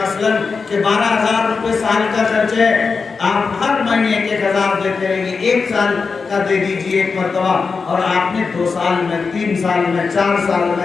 کہ 12,000 روپے سال کا خرچ ہے، آپ ہر مہینے 1,000 دیتے رہیں گے، 1 سال کا دے دیجئے ایک مرتبہ، اور آپ نے 2 سال میں، 3 سال میں، 4 سال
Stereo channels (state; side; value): quieter; right; 4.9 dB